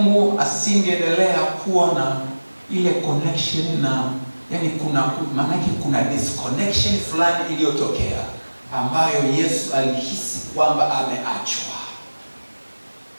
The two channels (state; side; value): inverted; both; correlation -1.00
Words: asingeendelea kuwa na ile connection na kuna disconnection fulani iliyotokea ambayo Yesu alihisi kwamba ameachwa.